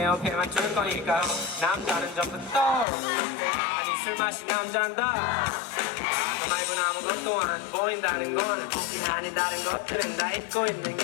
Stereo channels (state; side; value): drops out; right; at 2.9 s